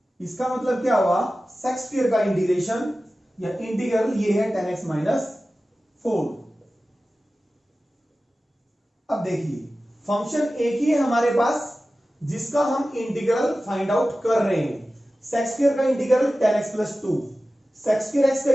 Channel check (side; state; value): both; normal; correlation 0.95